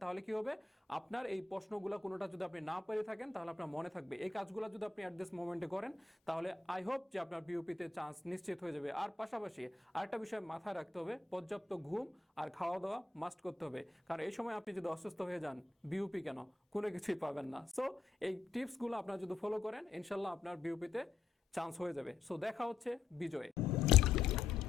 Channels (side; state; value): right; quieter; 4.1 dB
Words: তাহলে কি হবে, আপনার এই প্রশ্নগুলো কোনোটা যদি আপনি না পেরে থাকেন তাহলে আপনার মনে থাকবে। এই কাজগুলো যদি আপনি অ্যাট দিস মোমেন্টে করেন, তাহলে আই হোপ যে আপনার বিউপিতে চান্স নিশ্চিত হয়ে যাবে। আর পাশাপাশি আরেকটা বিষয় মাথায় রাখতে হবে, পর্যাপ্ত ঘুম আর খাওয়া দাওয়া মাস্ট করতে হবে, কারণ এই সময় আপনি যদি অসুস্থ হয়ে যান, বিউপি কেন, কোনো কিছুই পাবেন না। সো এই টিপসগুলো আপনারা যদি ফলো করেন, ইনশাল্লাহ আপনার বিউপিতে চান্স হয়ে যাবে। সো দেখা হচ্ছে বিজয়ে।